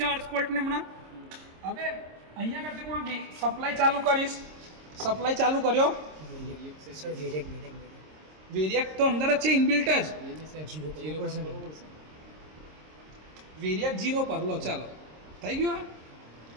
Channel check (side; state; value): left; late; 26 ms